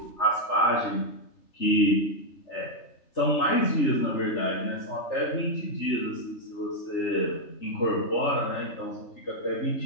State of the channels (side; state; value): right; late; 3.3 ms